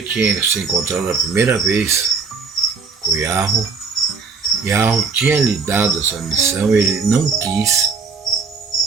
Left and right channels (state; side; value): quieter; left; 5.1 dB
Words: tinha se encontrado a primeira vez com Yahweh. Yahweh tinha lhe dado essa missão, ele não quis,